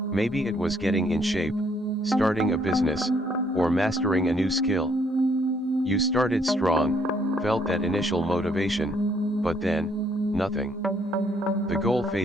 it was getting in shape, starting a business, or mastering a new skill. You started strong, felt that initial motivation, but then, nothing. The goal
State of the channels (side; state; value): both; normal; correlation 0.68